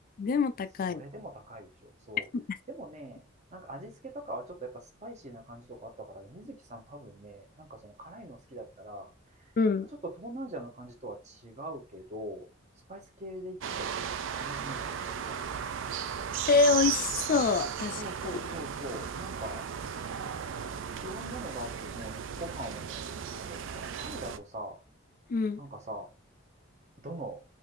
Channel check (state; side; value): normal; both; correlation 0.09